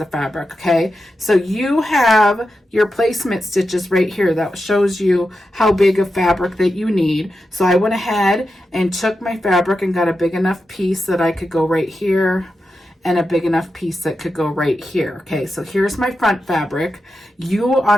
fabric. Okay, so you have your placement stitches right here that shows you how big of fabric that you need. So I went ahead and took my fabric and got a big enough piece that I could go right here and a big enough piece that could go right here. Okay, so here's my front fabric. You,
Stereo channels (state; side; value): normal; both; correlation 0.89